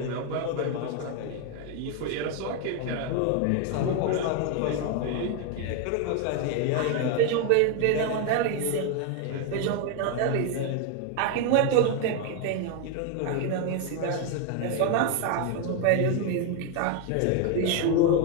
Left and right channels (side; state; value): both; different; correlation 0.01